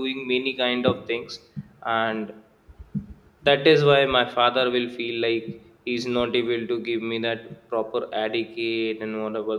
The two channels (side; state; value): both; identical; correlation 1.00